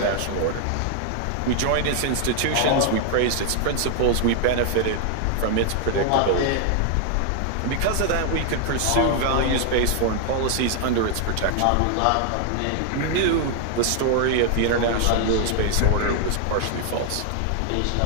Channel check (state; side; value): different; both; correlation 0.00